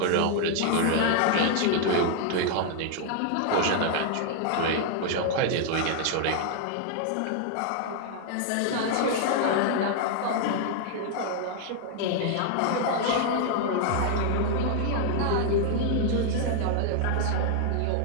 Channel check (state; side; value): different; both; correlation 0.00